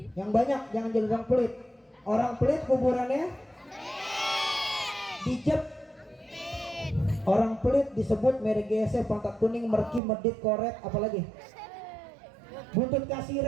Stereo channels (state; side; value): drops out; left; at 10.0 s